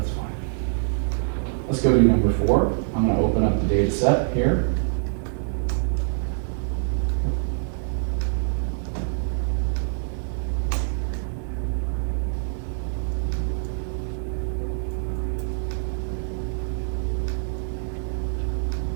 fine. Let's go to number 4. I'm going to open up the data set here.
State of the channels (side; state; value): left; silent; digital silence